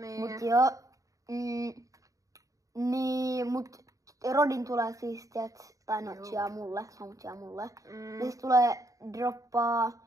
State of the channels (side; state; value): left; late; 0.16 ms